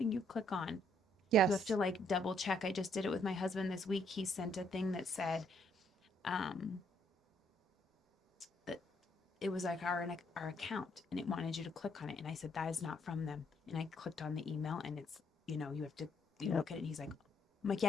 you click on, Yes. you have to like double check. I just did it with my husband this week. He sent a thing that said that it was like our account, and it wanted you to click on it, and I said, that is not from them. And I clicked on the email, and it's, you have to look at it, and he's like, I'm like, yeah,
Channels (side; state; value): both; normal; correlation 0.70